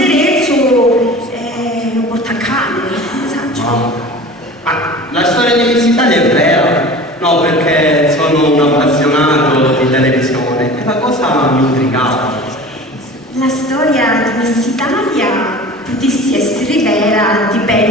e lo porta a cane, ne saggio. Ma la storia di Miss Italia è vera? No, perché sono un appassionato di televisione e la cosa mi intrigava. La storia di Miss Italia potesse essere vera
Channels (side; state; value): both; normal; correlation 0.39